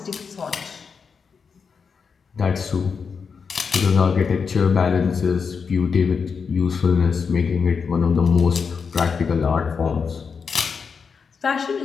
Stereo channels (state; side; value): quieter; right; 5.7 dB